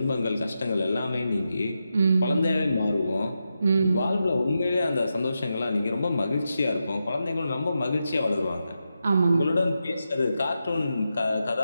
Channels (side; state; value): both; inverted; correlation -0.88